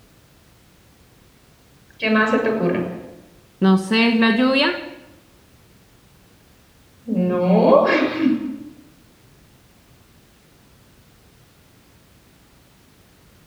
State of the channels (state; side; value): identical; both; correlation 1.00